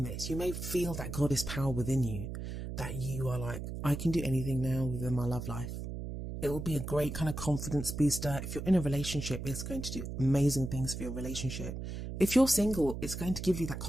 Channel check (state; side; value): noise; right; hum, 6 dB below the sound